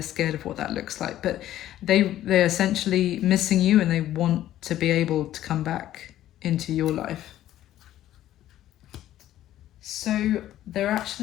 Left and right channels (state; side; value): quieter; right; 13.0 dB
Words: scared of what that looks like. But they're essentially missing you, and they want to be able to come back into your life. So their